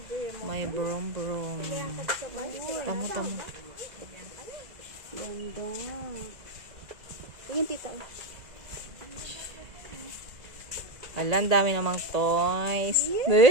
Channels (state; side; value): late; left; 2.0 ms